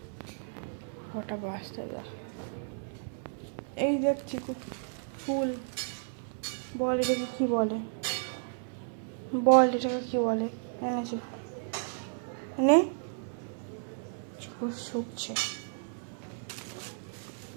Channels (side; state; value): left; silent; 56 dB below the other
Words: ওটা বাঁচতে দা। এই দেখ চিকু ফুল, বল এটাকে কি বলে, বল এটাকে কি বলে? এনেছি নে, চিকু শুকছে।